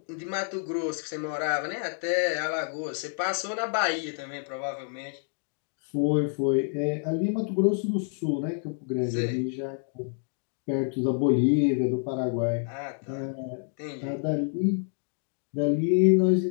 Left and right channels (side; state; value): right; silent; 58 dB below the other